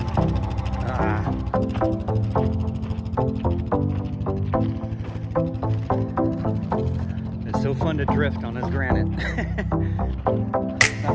It's so fun to drift on this granite.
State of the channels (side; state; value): both; identical; correlation 1.00